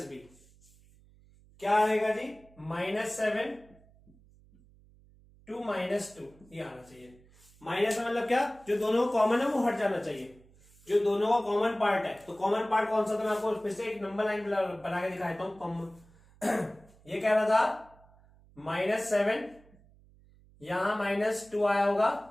B क्या आएगा जी, -7 to -2, ये आना चाहिए। माइनस में मतलब क्या, जो दोनों कॉमन है वो हट जाना चाहिए, जो दोनों का कॉमन पार्ट है, तो कॉमन पार्ट कौन सा था, मैं आपको फिर से एक नंबर लाइन बना के दिखाता हूं। ये कह रहा था -7, यहां -2 आया होगा,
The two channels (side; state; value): right; noise; hum, 27 dB below the sound